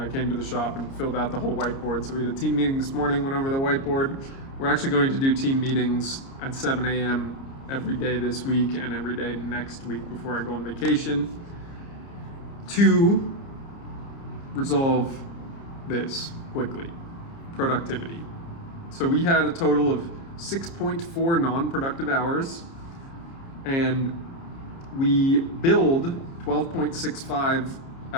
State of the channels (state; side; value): late; right; 30 ms